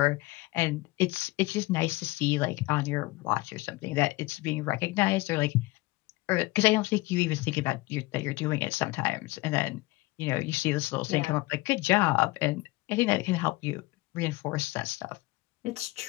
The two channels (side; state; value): right; quieter; 21.1 dB